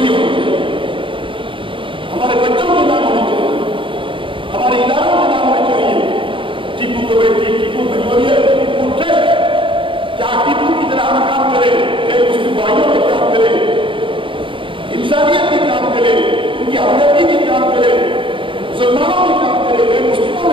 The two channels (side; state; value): left; late; 0.25 ms